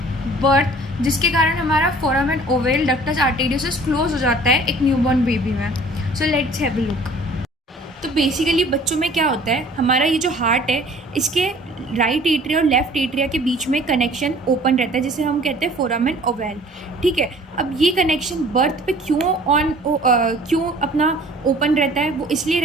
birth, जिसके कारण हमारा foramen ovale ductus arteriosus close हो जाता है एक न्यूबॉर्न बेबी में। So let's have a look. तो बेसिकली बच्चों में क्या होता है, हमारा ये जो हार्ट है इसके राइट एट्रिया और लेफ्ट एट्रिया के बीच में कनेक्शन ओपन रहता है, जिसे हम कहते हैं फोरामेन ओवल। ठीक है, अब ये कनेक्शन बर्थ पे क्यों अपना ओपन रहता है? वो इसलिए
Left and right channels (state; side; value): normal; both; correlation 0.51